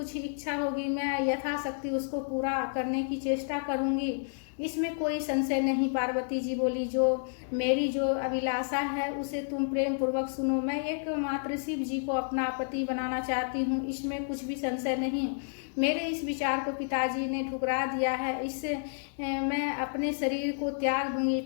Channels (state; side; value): silent; right; digital silence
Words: इच्छा होगी मैं यथाशक्ति उसको पूरा करने की चेष्टा करूंगी, इसमें कोई संशय नहीं। पार्वती जी बोली, मेरी जो अभिलाषा है उसे तुम प्रेम पूर्वक सुनो। मैं एकमात्र शिव जी को अपना पति बनाना चाहती हूँ, इसमें कुछ भी संशय नहीं। मेरे इस विचार को पिताजी ने ठुकरा दिया है, इससे मैं अपने शरीर को त्याग दूंगी।